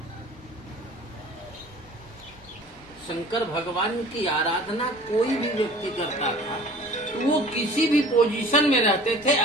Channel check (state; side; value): normal; both; correlation 0.46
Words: शंकर भगवान की आराधना कोई भी व्यक्ति करता था तो वो किसी भी पोजीशन में रहते थे,